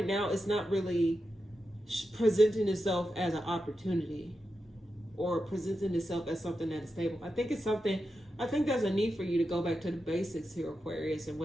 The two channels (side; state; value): both; normal; correlation 0.89